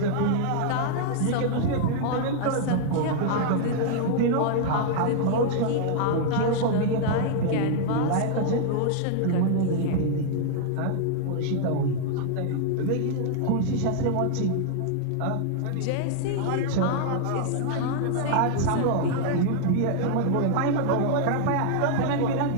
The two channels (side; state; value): both; different; correlation -0.01